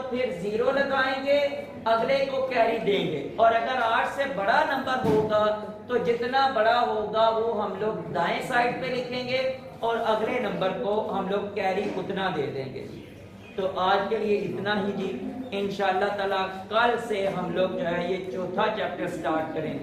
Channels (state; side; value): identical; both; correlation 1.00